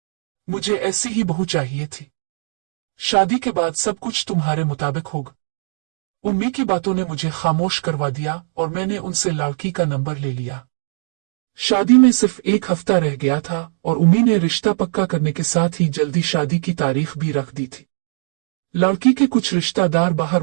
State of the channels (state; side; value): silent; left; digital silence